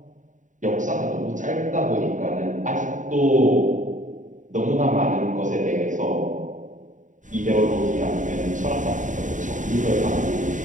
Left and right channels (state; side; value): late; left; 0.37 ms